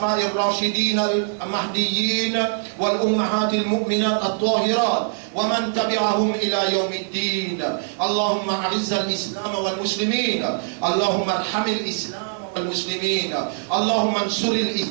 الراشدين المهديين والأمهات المؤمنات الطاهرات ومن تبعهم إلى يوم الدين اللهم أعز الإسلام والمسلمين اللهم ارحم الإسلام والمسلمين اللهم انصر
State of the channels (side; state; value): left; silent; digital silence